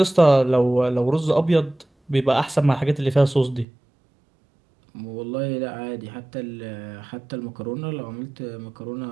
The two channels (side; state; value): left; drops out; at 3.7 s